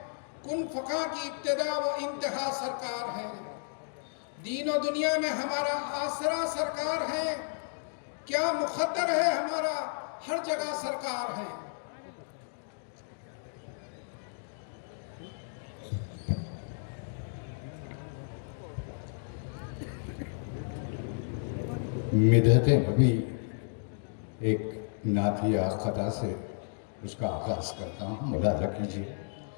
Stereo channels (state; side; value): silent; right; digital silence